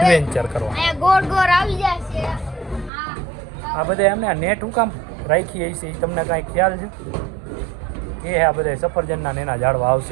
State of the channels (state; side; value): drops out; left; at 2.9 s